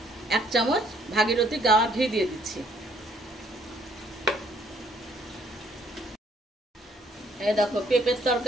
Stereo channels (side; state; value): both; normal; correlation 0.65